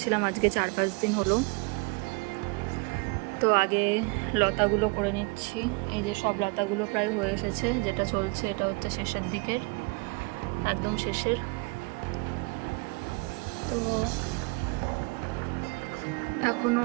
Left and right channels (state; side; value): quieter; left; 29.3 dB